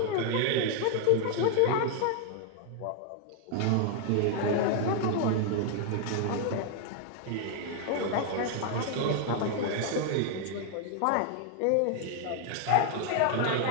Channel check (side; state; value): both; different; correlation 0.00